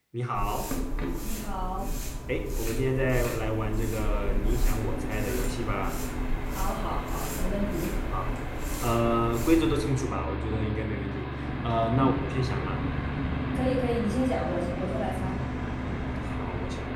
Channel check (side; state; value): both; identical; correlation 1.00